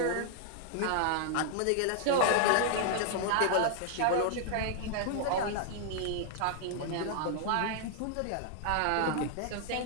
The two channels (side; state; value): both; different; correlation -0.01